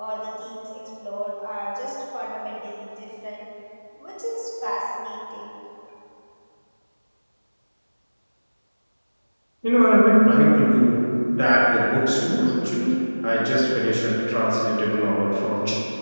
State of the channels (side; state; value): both; inverted; correlation -1.00